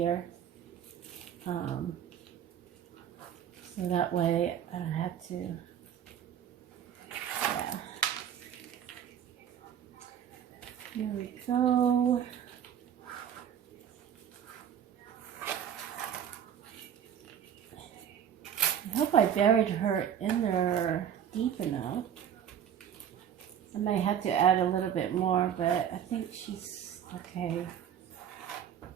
So that way I don't have to, yeah. Here we go. I hope I buried her in there deep enough. I might have to add a little bit more, but I think she's okay.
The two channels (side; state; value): left; quieter; 9.1 dB